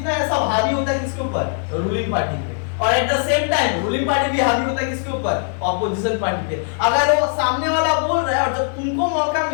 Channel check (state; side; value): silent; right; 62 dB below the other